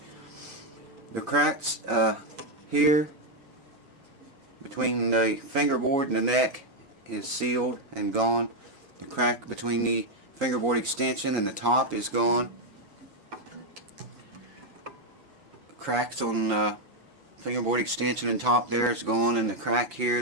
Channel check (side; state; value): left; late; 7.0 ms